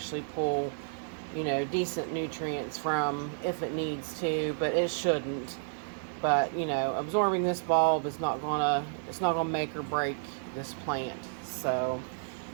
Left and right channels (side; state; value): left; silent; digital silence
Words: pull, decent nutrients from if it needs to, but it shouldn't. But, absorbing this bulb is not gonna make or break this plant. So,